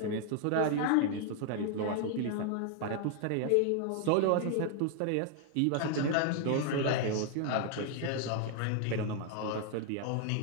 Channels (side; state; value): both; different; correlation 0.00